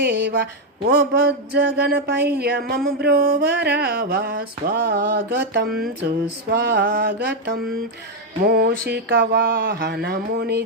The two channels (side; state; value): both; normal; correlation 0.03